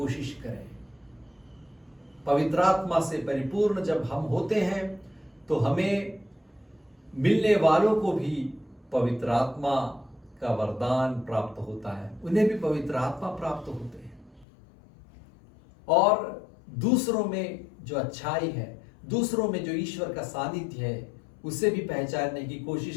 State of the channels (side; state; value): right; drops out; at 14.5 s